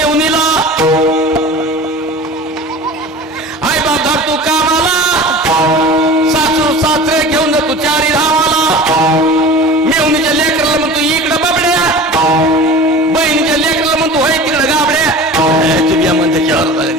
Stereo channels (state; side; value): normal; both; correlation 0.37